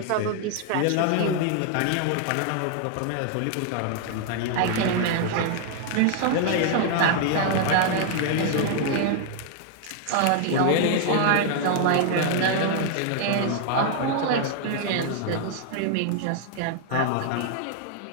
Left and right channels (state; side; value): different; both; correlation 0.00